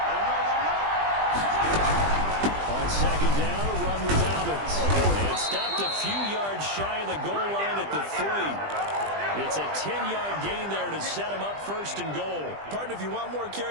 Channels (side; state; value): left; late; 20 ms